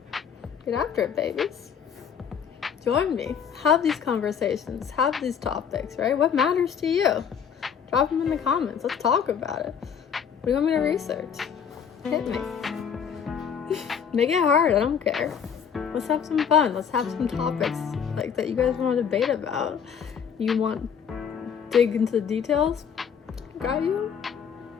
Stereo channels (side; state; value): right; quieter; 7.5 dB